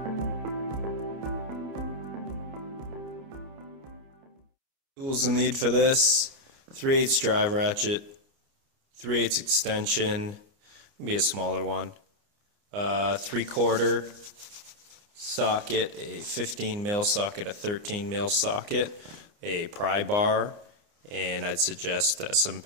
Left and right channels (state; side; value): late; left; 29 ms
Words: Tools you'll need for this: 3/8 drive ratchet, 3/8 extension, can be a smaller one, 3/4 socket, a 15mm socket, a 13mm socket, a pry bar, and I'd suggest some